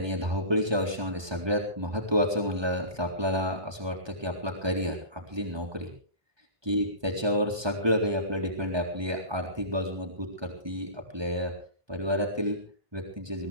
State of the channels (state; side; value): late; left; 1.2 ms